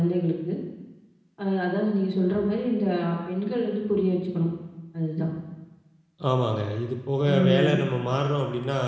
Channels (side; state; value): both; identical; correlation 1.00